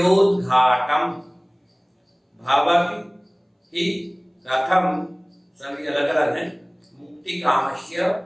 भवति ही कथम, सभी अलग अलग हैं। मुक्ति कामस्य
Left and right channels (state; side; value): identical; both; correlation 1.00